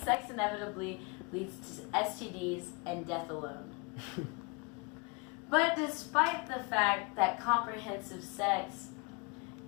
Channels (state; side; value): quieter; right; 30.2 dB